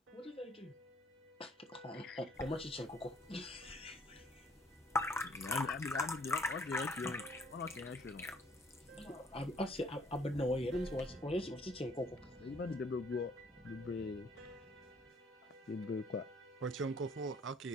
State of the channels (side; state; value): both; normal; correlation 0.61